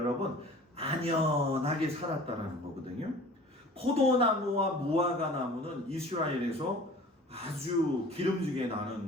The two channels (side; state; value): both; normal; correlation 0.45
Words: 안연하게 살았다라는 거거든요. 포도나무와 무화과 나무는 이스라엘에서 아주 기름지게